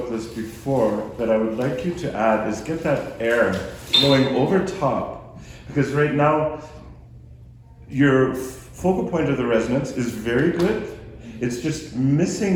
this before, that I would like you to add is get that air flowing over top. Because right now, your focal point of the resonance is very good. It's just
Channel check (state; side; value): identical; both; correlation 1.00